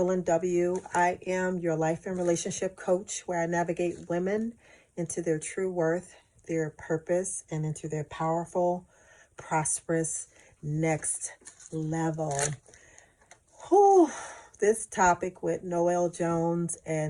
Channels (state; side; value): identical; both; correlation 1.00